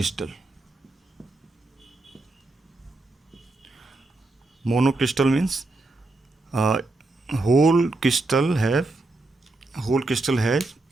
Monocrystal means whole crystal has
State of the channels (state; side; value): quieter; left; 3.1 dB